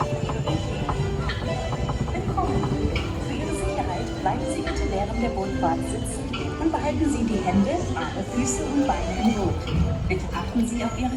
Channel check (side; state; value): both; identical; correlation 1.00